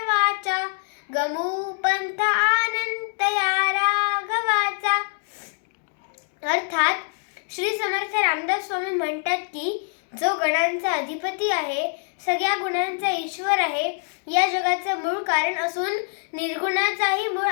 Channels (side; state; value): right; silent; 62 dB below the other